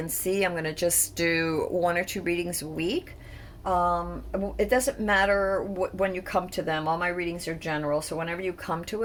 C, I'm going to just do one or two readings a week. It doesn't matter when you come to them. All my readings are general, so whenever you come to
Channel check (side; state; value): both; identical; correlation 1.00